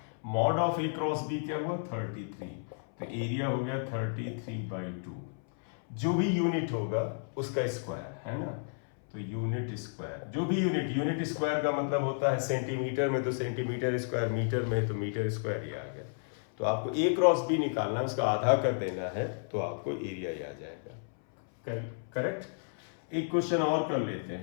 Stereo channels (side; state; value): right; silent; 56 dB below the other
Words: mod of A cross B क्या हुआ 33, तो एरिया हो गया 33/2, जो भी यूनिट होगा उसका स्क्वायर है ना। तो यूनिट स्क्वायर, जो भी यूनिट स्क्वायर का मतलब होता है सेंटीमीटर में तो सेंटीमीटर स्क्वायर, मीटर में तो मीटर स्क्वायर, ये आ गया। तो आपको ए क्रॉस बी निकालना है, उसका आधा कर देना है तो आपको एरिया ही आ जाएगा। करेक्ट। एक क्वेश्चन और कर लेते